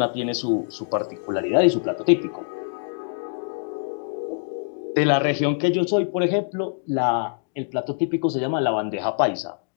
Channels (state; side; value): silent; right; digital silence